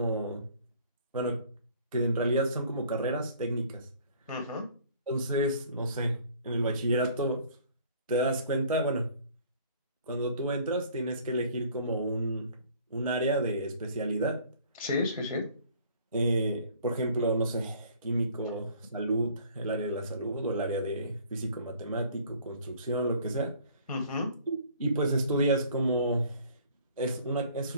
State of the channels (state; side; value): inverted; both; correlation -0.54